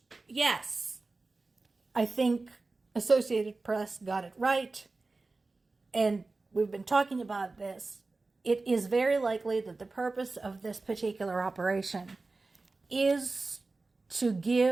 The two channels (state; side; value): quieter; left; 3.5 dB